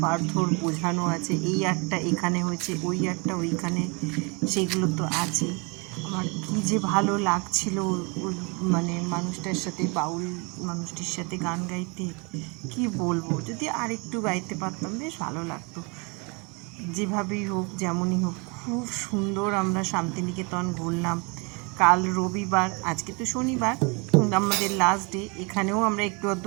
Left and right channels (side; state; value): left; quieter; 31.0 dB